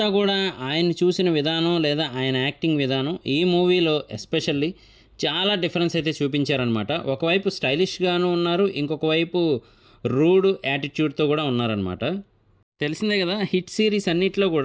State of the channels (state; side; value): identical; both; correlation 1.00